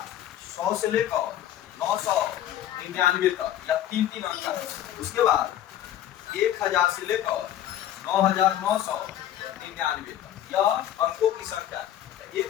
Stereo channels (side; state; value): right; quieter; 11.6 dB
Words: 100 से लेकर 999 तक, या 3 अंक का है। उसके बाद 1000 से लेकर 9999 तक, यह अंकों की संख्या।